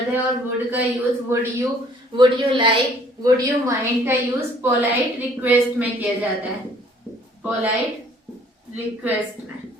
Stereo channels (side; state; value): both; normal; correlation 0.58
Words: है और वुड का use would you like, would you mind का यूज पोलाइट रिक्वेस्ट में किया जाता है। पोलाइट रिक्वेस्ट में।